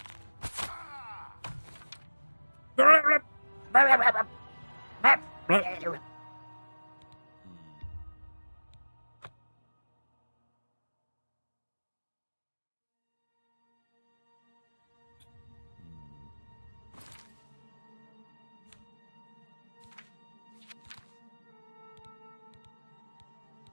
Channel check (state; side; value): inverted; both; correlation -1.00